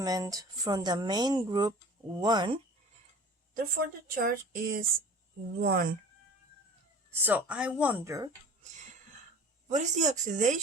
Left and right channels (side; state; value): both; normal; correlation 0.41